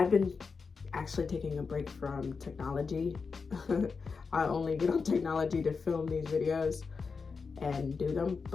been actually taking a break from technology. I only get on technology to film these videos and do them,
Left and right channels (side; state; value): right; quieter; 5.0 dB